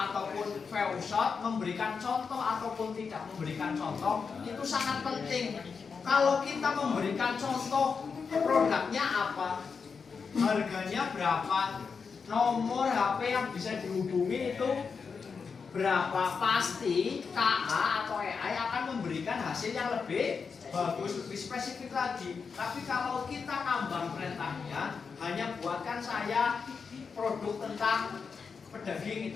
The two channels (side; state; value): right; quieter; 5.5 dB